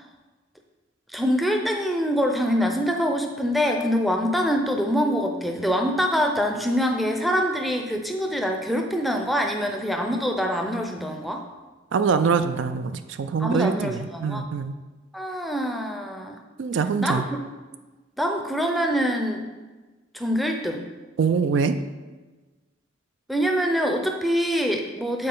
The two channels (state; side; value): normal; both; correlation 0.62